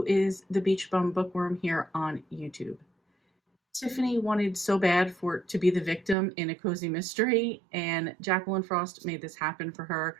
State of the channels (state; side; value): drops out; left; at 6.2 s